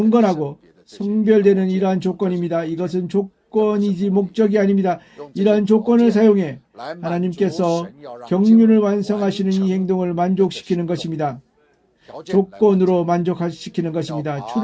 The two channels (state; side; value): identical; both; correlation 1.00